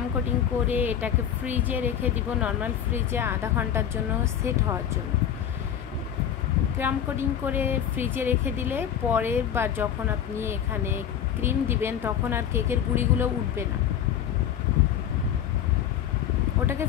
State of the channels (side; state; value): right; quieter; 9.4 dB